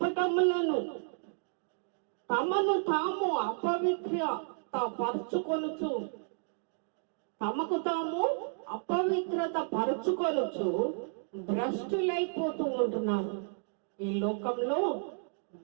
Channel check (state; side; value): silent; left; digital silence